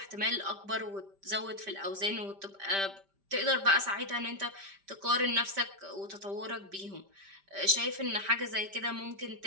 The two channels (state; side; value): late; left; 5.1 ms